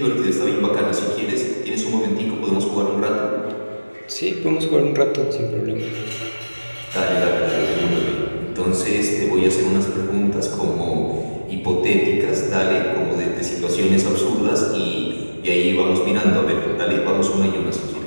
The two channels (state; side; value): inverted; both; correlation -1.00